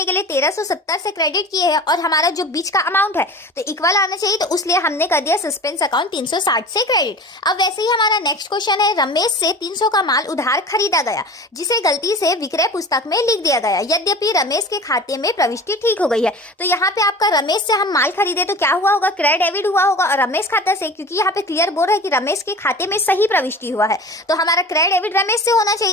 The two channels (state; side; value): normal; both; correlation 0.37